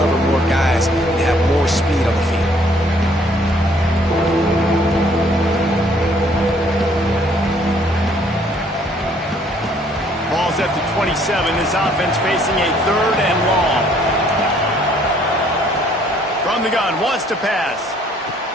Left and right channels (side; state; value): both; normal; correlation 0.63